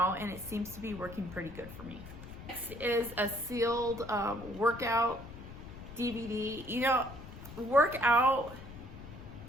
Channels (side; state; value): left; noise; rumble, 14 dB below the sound